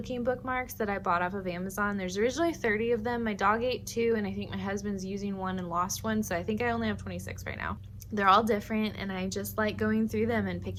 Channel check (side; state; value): both; identical; correlation 1.00